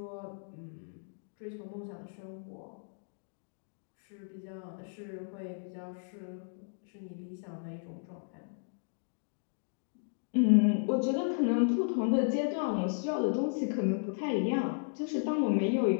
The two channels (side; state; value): right; silent; digital silence